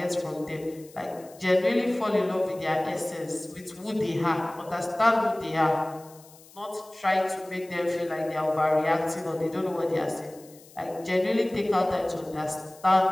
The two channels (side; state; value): left; noise; hiss, 24 dB below the sound